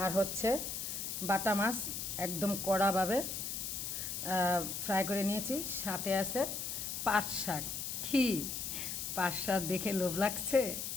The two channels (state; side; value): noise; left; hiss, 4 dB below the sound